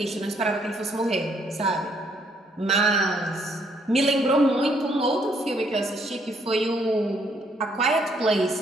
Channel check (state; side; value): normal; both; correlation 0.69